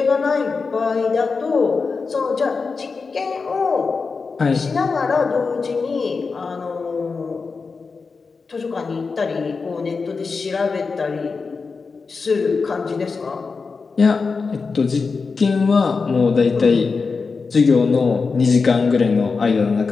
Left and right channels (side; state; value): right; quieter; 4.7 dB